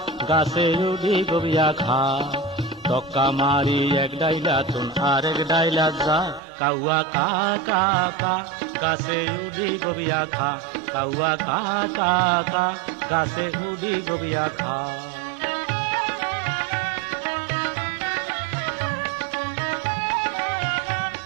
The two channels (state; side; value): drops out; left; at 6.4 s